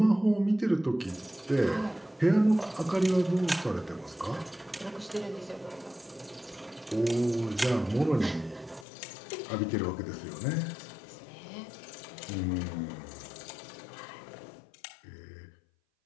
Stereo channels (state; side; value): drops out; right; at 8.8 s